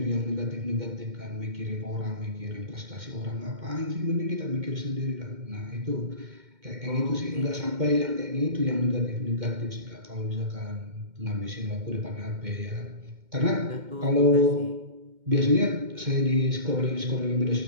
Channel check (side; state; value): left; late; 2.1 ms